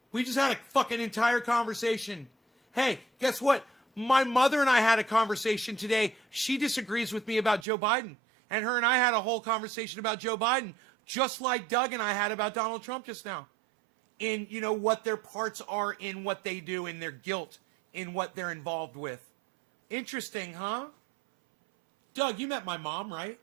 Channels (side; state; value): left; drops out; at 7.7 s